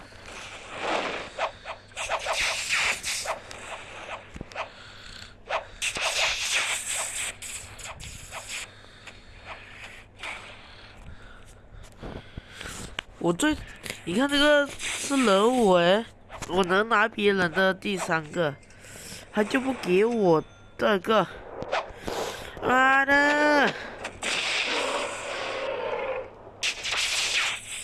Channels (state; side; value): identical; both; correlation 1.00